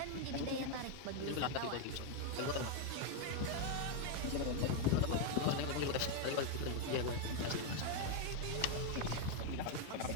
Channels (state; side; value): different; both; correlation 0.01